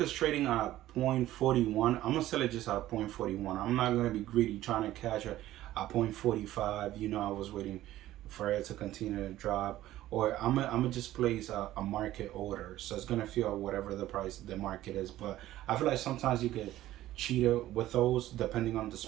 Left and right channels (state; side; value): quieter; left; 14.5 dB